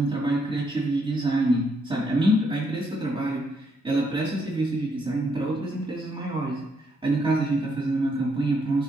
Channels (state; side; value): normal; both; correlation 0.75